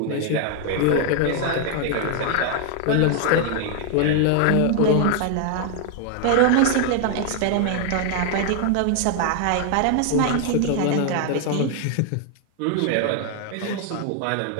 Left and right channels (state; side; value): different; both; correlation 0.00